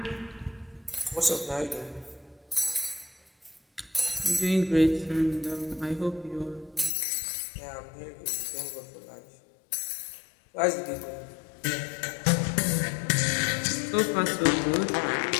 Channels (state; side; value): drops out; right; at 6.9 s